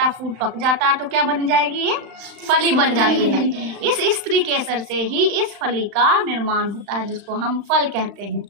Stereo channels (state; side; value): late; left; 35 ms